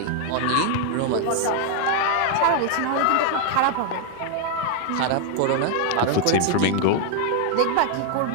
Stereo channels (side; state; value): both; different; correlation 0.00